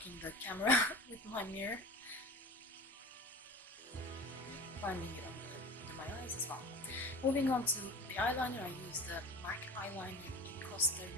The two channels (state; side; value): normal; both; correlation 0.34